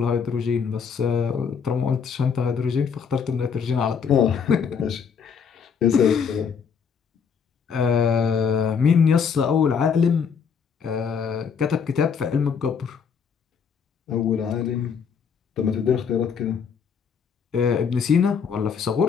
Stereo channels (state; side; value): quieter; right; 6.5 dB